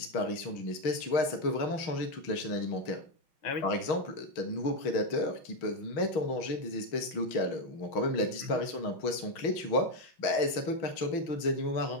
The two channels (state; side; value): late; right; 6.3 ms